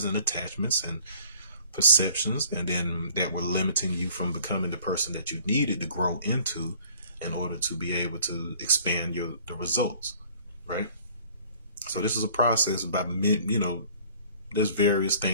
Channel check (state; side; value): inverted; both; correlation -0.53